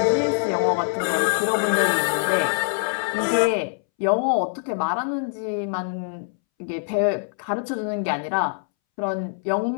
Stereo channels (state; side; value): silent; right; 63 dB below the other